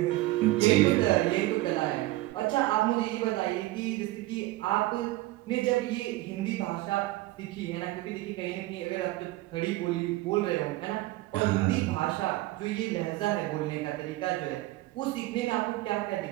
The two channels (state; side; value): quieter; left; 18.0 dB